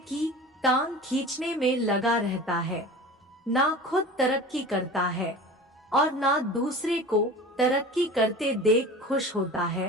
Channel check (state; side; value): normal; both; correlation 0.37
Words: टांग खींचने में लगा रहता है, ना खुद तरक्की करता है और ना दूसरे को तरक्की करते देख खुश होता